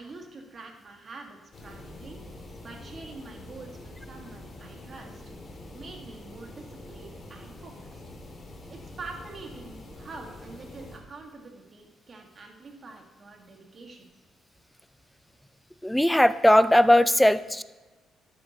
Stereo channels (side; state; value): both; normal; correlation 0.98